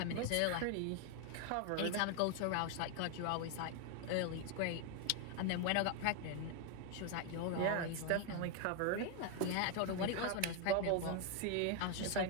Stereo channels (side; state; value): both; different; correlation 0.01